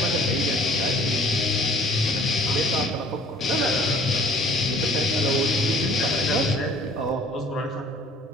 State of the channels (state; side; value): normal; both; correlation 0.53